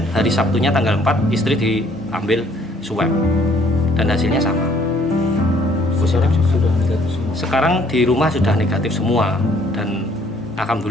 hari Sabtunya tanggal 4 istri diambil swab dan hasilnya sama. Positif sudah negatif semua. Sekarang di rumah sudah negatif semua, dan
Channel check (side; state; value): both; normal; correlation 0.62